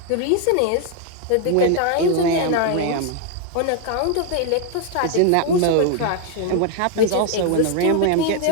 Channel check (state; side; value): different; both; correlation 0.00